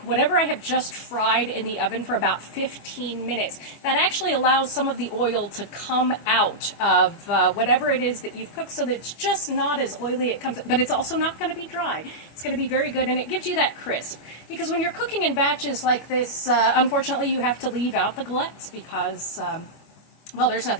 I have just fried in the oven for about 15 minutes. That actually allows some of the oil to come out of whatever it is that you've cooked, so that it's just not as oily it comes, but it's also not going to be dry. It's going to be very good, and it gives you that crisp. Because when you're cooking in batches like this, unfortunately you have to leave out the galettes because well, there's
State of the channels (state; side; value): late; right; 25 ms